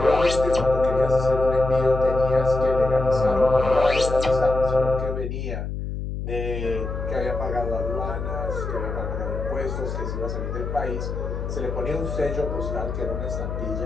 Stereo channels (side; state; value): left; noise; hum, 5 dB below the sound